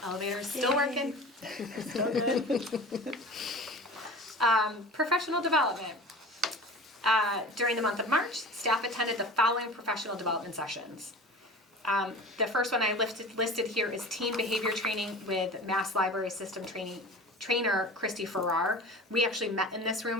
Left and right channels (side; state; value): both; normal; correlation 0.37